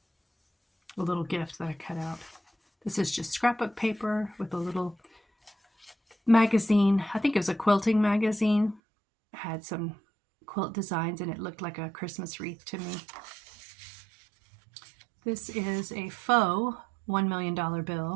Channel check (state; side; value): drops out; left; at 8.8 s